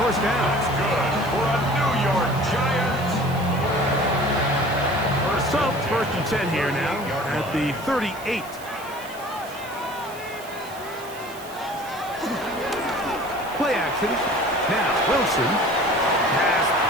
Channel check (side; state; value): right; noise; hiss, 19 dB below the sound